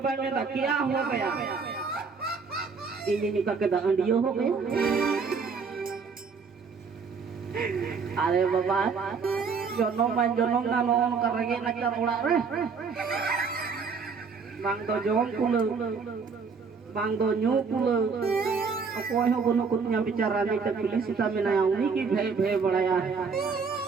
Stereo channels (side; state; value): left; quieter; 5.3 dB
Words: में ना क्या हो गया ini kakek dah andio ho gaya अरे बाबा jonom na non karage na karula re bang do jom pula bang do nyu pula akoy ho gono kunya bicara ni tak pilih sita menayang ni ki bhe bhe badaya